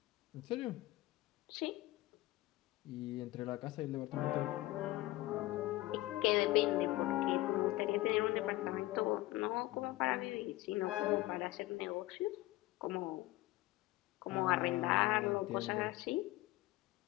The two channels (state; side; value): quieter; right; 18.0 dB